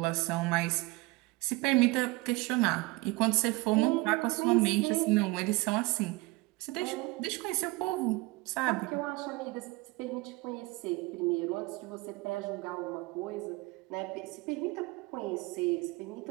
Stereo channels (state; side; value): quieter; left; 23.0 dB